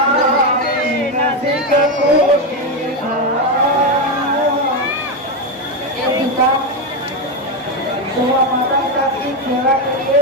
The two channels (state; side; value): normal; both; correlation 0.10